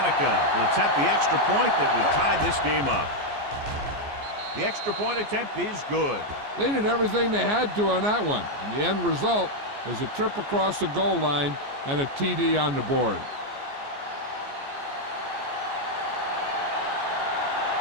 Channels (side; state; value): left; late; 14 ms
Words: will attempt the extra point that would tie this game up. The extra point attempt is good. They did everything they had to on that one, and the end result was a trip across the goal line and a TD on the board.